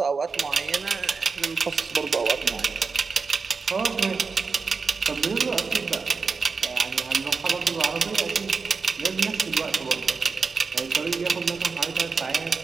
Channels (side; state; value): left; quieter; 4.8 dB